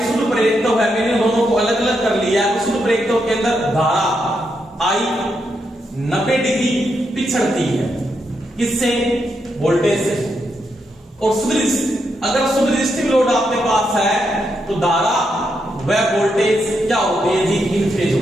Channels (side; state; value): both; normal; correlation 0.82